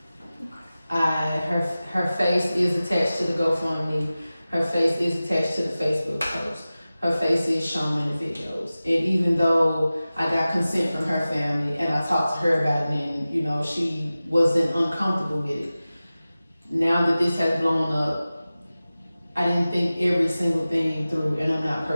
Her face is attached to the GoFundMe. Her face is attached to the Facebook post. Her face is shown in the videos. And even though I got consent from her family and I talked to her about it and, she wasn't uncomfortable with it. Now that this has blown up, I didn't think every single thing through, and I'm not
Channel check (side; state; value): both; inverted; correlation -0.96